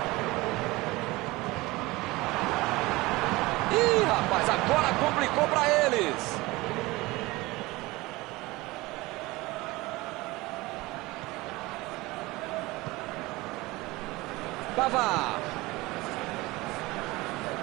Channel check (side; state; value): left; quieter; 21.2 dB